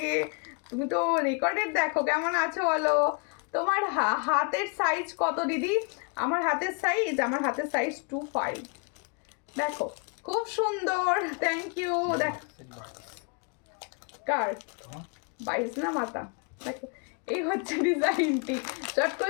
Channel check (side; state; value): right; quieter; 35.0 dB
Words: তুমি তো রেকর্ডেড দেখো, কেমন আছো বলো? তোমার হাতের সাইজ কত দিদি? আমার হাতের সাইজ 25। দেখো খুব সুন্দর, থ্যাংক ইউ। দেখো কার 22 না মাথা? দেখো এই হচ্ছে ডিজাইনটি, চট